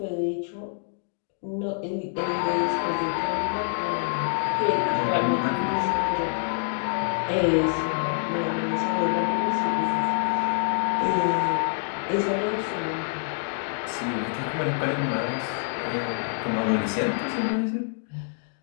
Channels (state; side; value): silent; right; digital silence